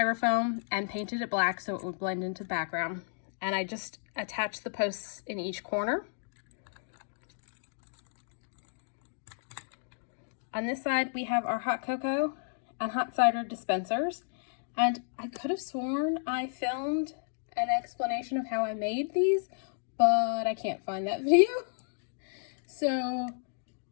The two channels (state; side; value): silent; right; digital silence